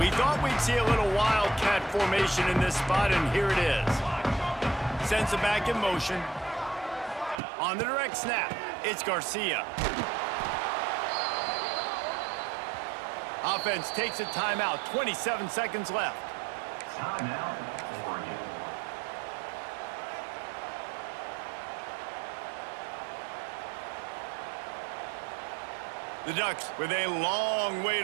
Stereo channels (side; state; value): left; drops out; at 7.4 s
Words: thought we'd see a little wildcat formation in this spot, and here it is. Sends it back in motion. On the direct snap, it's Garcia. Offense takes a timeout. 27 seconds left. The Ducks with a long way